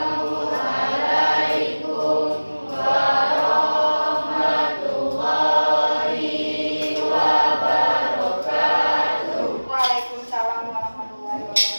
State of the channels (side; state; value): both; inverted; correlation -1.00